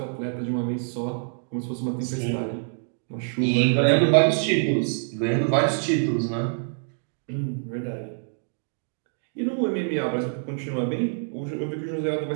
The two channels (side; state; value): left; silent; digital silence